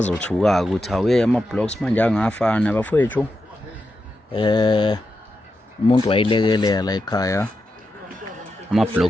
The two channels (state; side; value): normal; both; correlation 0.88